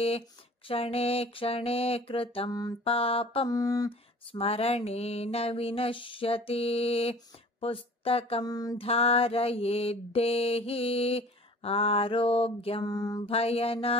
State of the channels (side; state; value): both; normal; correlation 0.46